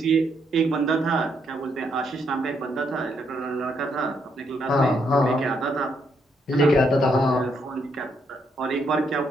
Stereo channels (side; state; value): both; normal; correlation 0.76